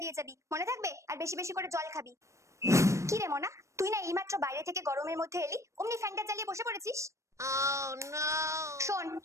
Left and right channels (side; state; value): left; late; 0.15 ms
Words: দিয়ে যাবি, মনে থাকবে? আর বেশি বেশি করে জল খাবি। কি রে মনা, তুই না এইমাত্র বাইরে থেকে গরমের মধ্যে এলি, অমনি ফ্যানটা চালিয়ে বসে পড়েছিস? শোন,